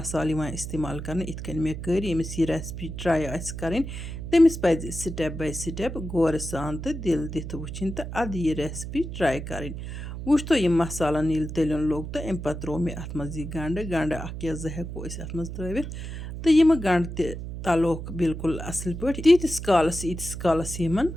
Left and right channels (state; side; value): noise; right; hum, 7 dB below the sound